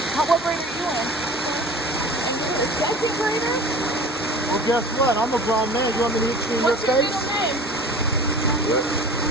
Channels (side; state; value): both; normal; correlation 0.41